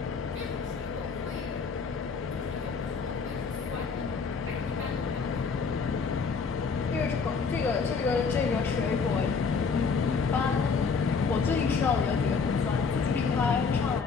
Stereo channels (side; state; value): right; quieter; 5.2 dB